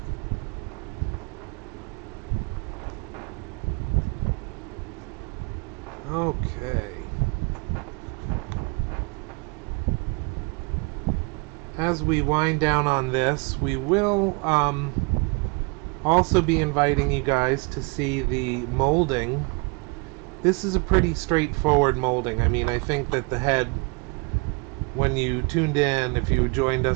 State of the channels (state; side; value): quieter; left; 31.2 dB